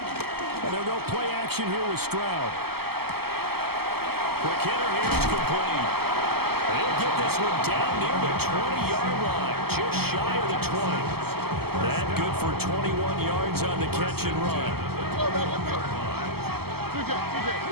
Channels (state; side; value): late; left; 0.96 ms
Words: And they'll go play action here with Stroud. Quick hitter here, it's complete. They'll get this one down near the 20-yard line, just shy of the 20. That good for 21 yards on the catch and run.